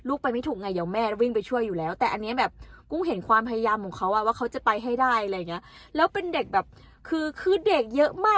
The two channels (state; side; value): identical; both; correlation 1.00